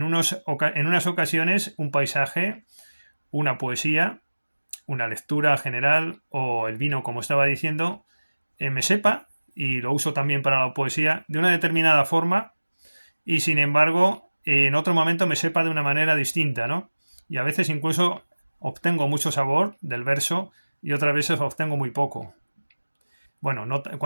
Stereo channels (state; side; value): inverted; both; correlation -1.00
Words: unas ocasiones un paisaje, una poesía, una lectura general o el vino, como estaba diciendo, me sepa, y lo uso también para la poesía, de una determinada forma y sin embargo en otro momento me sepa de una manera distinta, ¿no? Y a veces incluso obtengo mucho sabor del verso y otras veces obtengo muy poco. Bueno,